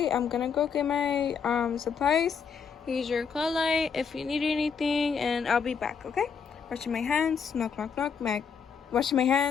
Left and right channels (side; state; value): right; quieter; 6.4 dB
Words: I'm gonna go get my supplies. Here's your call light if you need anything, and I'll be back. Okay? Washing my hands. Knock, knock, knock. Washing my